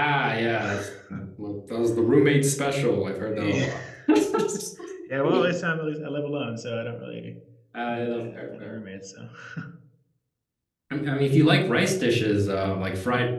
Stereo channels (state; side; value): identical; both; correlation 1.00